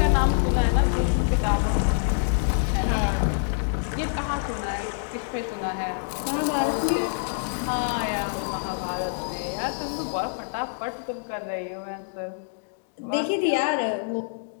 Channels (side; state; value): right; silent; digital silence